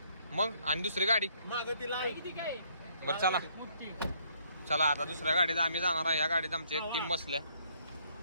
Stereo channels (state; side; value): inverted; both; correlation -0.66